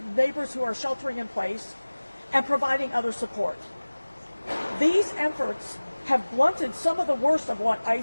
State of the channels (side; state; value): both; inverted; correlation -1.00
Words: neighbors who are sheltering in place, and providing other support. These efforts have blunted some of the worst of what